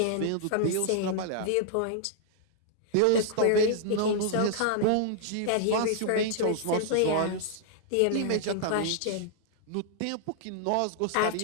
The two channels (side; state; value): both; different; correlation -0.01